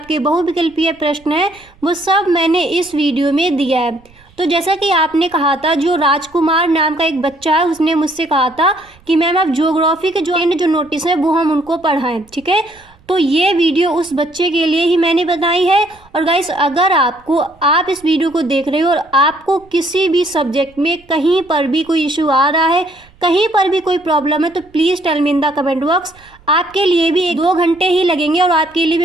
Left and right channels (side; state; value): right; noise; rumble, 29 dB below the sound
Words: बहुविकल्पीय प्रश्न है, वो सब मैंने इस वीडियो में दिया है। तो जैसा कि आपने कहा था, जो राजकुमार नाम का एक बच्चा है, उसने मुझसे कहा था कि मैम आप ज्योग्राफी के जो नोटिस है वो हम उनको पढ़ाएं, ठीक है। तो ये वीडियो उस बच्चे के लिए ही मैंने बनाई है। और गाइस, अगर आप इस वीडियो को देख रहे हो और आपको किसी भी सब्जेक्ट में कहीं पर भी कोई इशू आ रहा है, कहीं पर भी कोई प्रॉब्लम है, तो please tell me in the comment box. आपके लिए भी 1-2 घंटे ही लगेंगे और आपके लिए